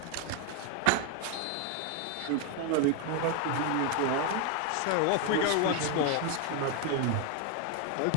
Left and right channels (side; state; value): both; different; correlation 0.01